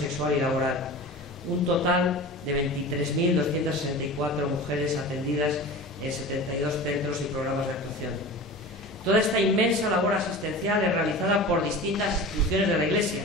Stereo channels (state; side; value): normal; both; correlation 0.34